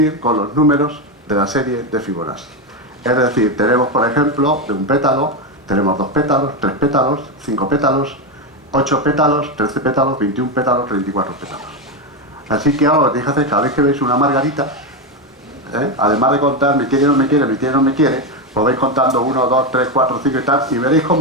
con los números de la serie de Fibonacci. Es decir, tenemos, por ejemplo, de un pétalo, tenemos 2 pétalos, 3 pétalos, 5 pétalos, 8 pétalos, 13 pétalos, 21 pétalos, 34 pétalos. Así que ahora os dije hacer, cada vez que veis una margarita, además de contar me quiere, no me quiere, me quiere, no me quiere, os vais contando 1, 2, 3, 4, 5 y tal, y veréis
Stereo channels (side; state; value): both; normal; correlation 0.10